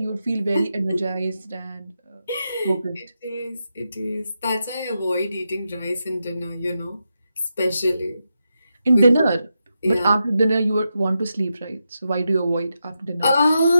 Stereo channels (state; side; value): inverted; both; correlation -0.87